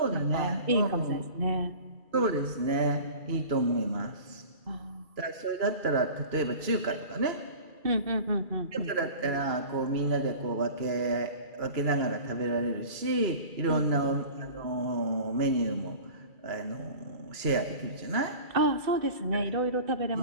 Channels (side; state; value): left; late; 2.3 ms